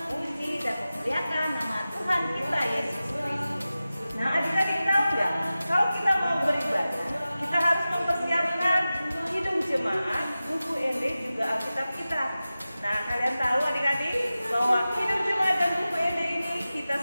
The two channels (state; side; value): inverted; both; correlation -0.95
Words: dan memuliakan nama Tuhan kita Yesus Kristus. Nah, adik-adik tahu nggak? Kalau kita mau beribadah, kita harus mempersiapkan hidung jemaat, buku ND juga Alkitab kita. Nah, kalian tahu adik-adik bahwa hidung jemaat dan buku ND ini kita